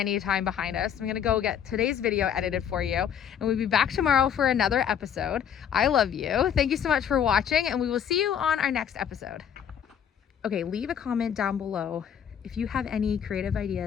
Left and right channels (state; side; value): quieter; right; 8.6 dB